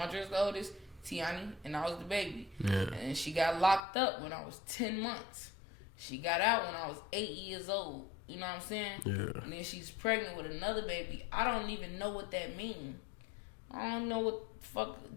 the oldest, Tiani, and I was the baby. Yeah. And she got locked up when I was 10 months. She got out when I was 8 years old. You know what I'm saying? Yeah. And then she's pregnant with another baby. I don't even know what that means. I don't know what the fuck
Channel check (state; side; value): drops out; right; at 3.8 s